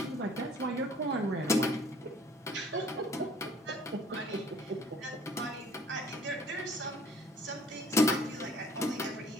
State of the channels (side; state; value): both; normal; correlation 0.56